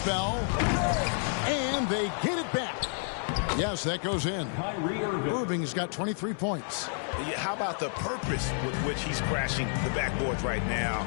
And they get it back. Yes, that goes in. Irving's got 23 points. How about the purpose with which he's crashing the backboards right now?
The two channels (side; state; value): right; silent; 58 dB below the other